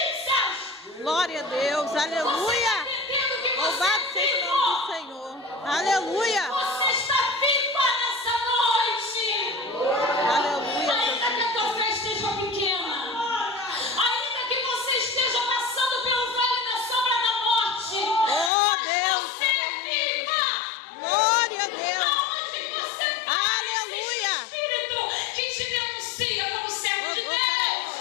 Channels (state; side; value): drops out; right; at 18.5 s